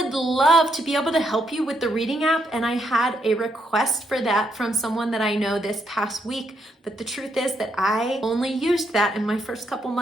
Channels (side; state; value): both; normal; correlation 0.77